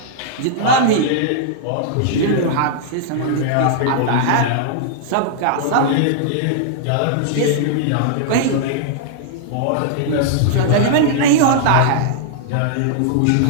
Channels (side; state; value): both; different; correlation -0.01